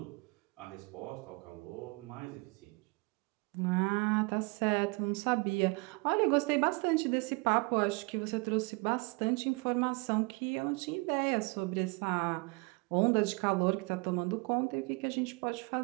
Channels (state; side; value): quieter; left; 28.7 dB